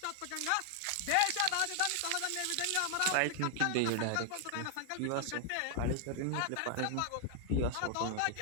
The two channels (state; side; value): different; both; correlation 0.00